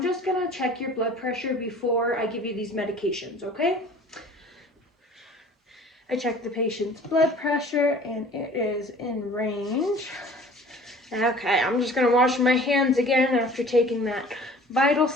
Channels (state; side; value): normal; both; correlation 0.47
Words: just gonna check your blood pressure before I give you these medications, okay? I checked the patient's blood pressure and it is in range. Okay, I'm just gonna wash my hands again after taking that vital